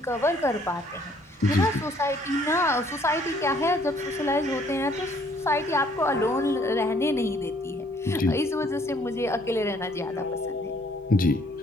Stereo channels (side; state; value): both; normal; correlation 0.63